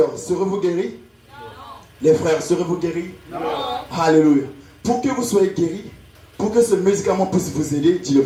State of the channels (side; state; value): both; identical; correlation 1.00